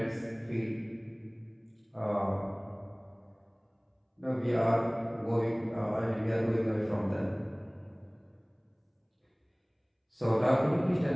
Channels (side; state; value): both; identical; correlation 1.00